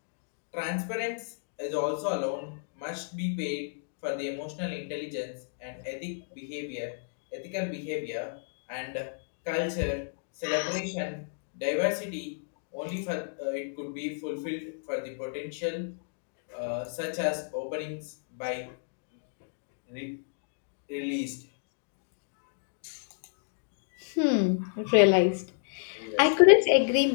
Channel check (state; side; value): silent; right; digital silence